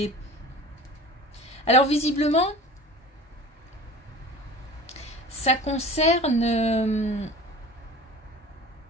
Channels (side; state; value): both; normal; correlation 0.39